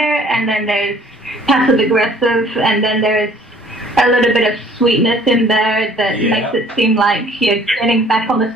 and then there's passive aggressive, and then there's a little bit of sweetness in there that makes it seem like you're getting back on the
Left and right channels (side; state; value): both; normal; correlation 0.56